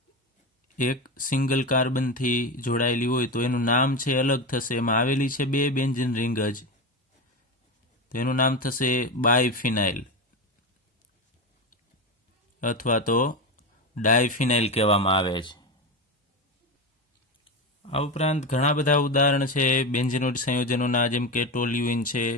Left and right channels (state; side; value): normal; both; correlation 0.18